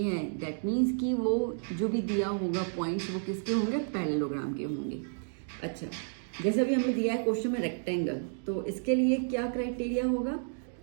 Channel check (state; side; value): silent; left; digital silence